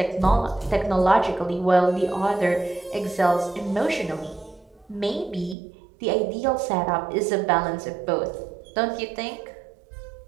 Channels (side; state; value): left; drops out; at 5.6 s